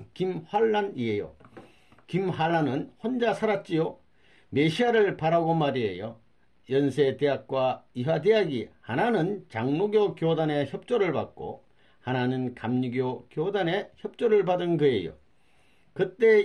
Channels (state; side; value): identical; both; correlation 1.00